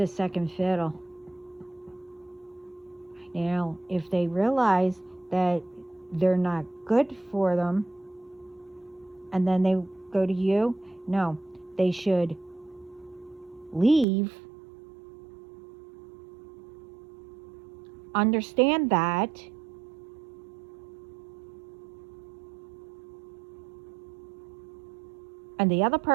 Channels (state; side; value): drops out; left; at 14.1 s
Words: second fiddle. Now, if they realize that they're not good for them, and then they go to you, no, they should leave, understand that, and the other